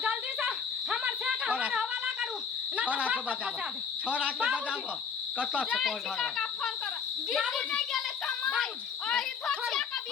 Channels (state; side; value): quieter; right; 6.4 dB